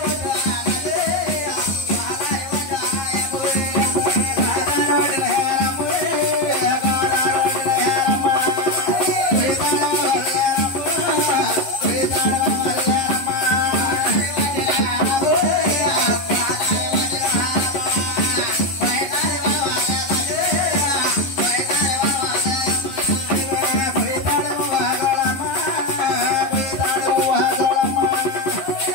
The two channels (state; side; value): late; right; 11 ms